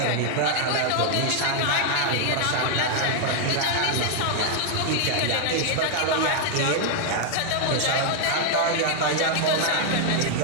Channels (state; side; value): different; both; correlation 0.00